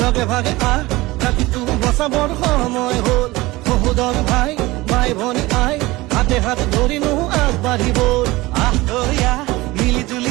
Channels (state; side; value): quieter; left; 20.2 dB